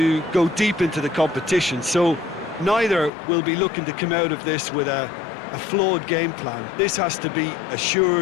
go deep into the competition, so neither will be looking to come out of this with a flawed game plan. This has to be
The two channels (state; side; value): drops out; right; at 3.1 s